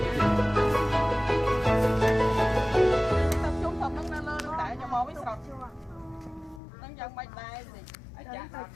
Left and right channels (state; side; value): drops out; right; at 6.6 s